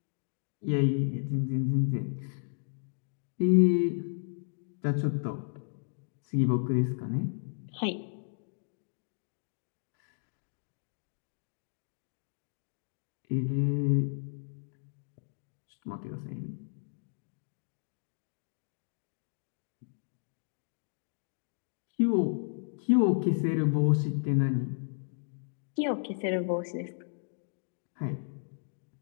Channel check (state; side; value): silent; right; digital silence